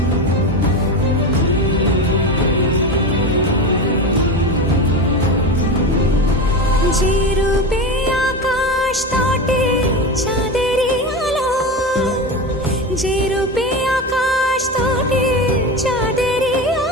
যে রূপে আকাশ তটে চাঁদেরই আলো, যে রূপে আকাশ তটে চাঁদেরই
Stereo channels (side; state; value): both; normal; correlation 0.22